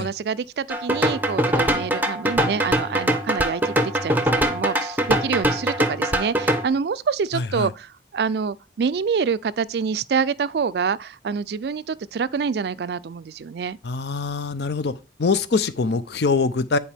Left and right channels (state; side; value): normal; both; correlation 0.29